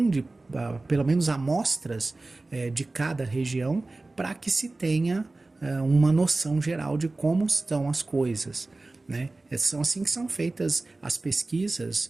pelo menos amostras de cada região, para que se tenha uma noção geral de como estão as coisas, né? São assim que são feitas as pesquisas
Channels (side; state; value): left; quieter; 3.1 dB